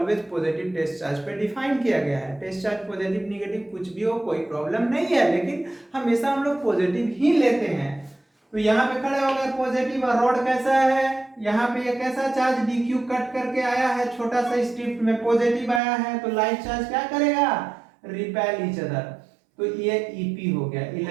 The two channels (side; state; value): left; drops out; at 15.8 s